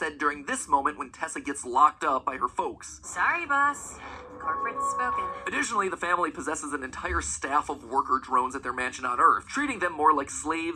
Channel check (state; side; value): identical; both; correlation 1.00